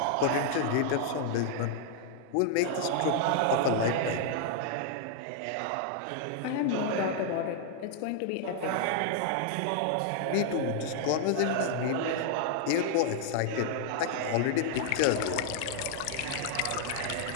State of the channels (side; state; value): both; different; correlation -0.01